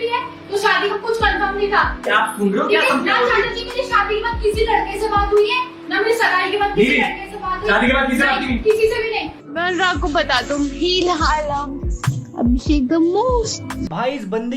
है तो शादी का कुछ कंफर्म नहीं था। क्या आप सुन रहे हो? क्या ना शादी की मेरी शादी के बाद किसी लड़के से बात हुई है, ना मेरी सगाई के बाद किसी लड़के से बात हुई। शादी के बाद किसी से बात नहीं? किसी से भी नहीं। मैं अनुराग को बता दूं अभिषेक द मोस्ट। भाई इस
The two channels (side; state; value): both; identical; correlation 1.00